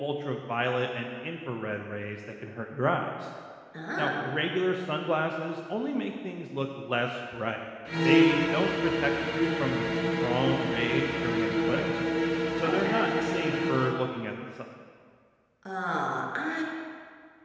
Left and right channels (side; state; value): both; identical; correlation 1.00